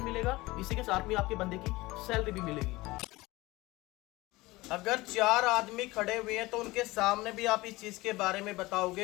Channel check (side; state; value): right; quieter; 20.4 dB